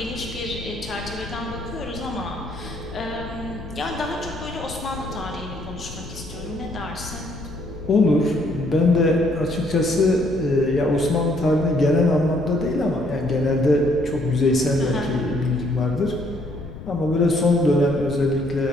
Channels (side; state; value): left; noise; rumble, 13 dB below the sound